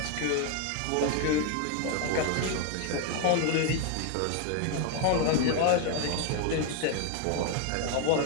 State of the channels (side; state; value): both; different; correlation 0.01